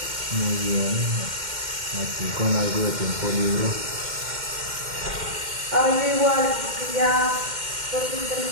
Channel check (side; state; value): left; late; 2.1 ms